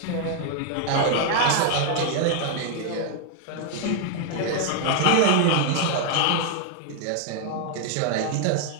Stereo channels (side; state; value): both; different; correlation 0.00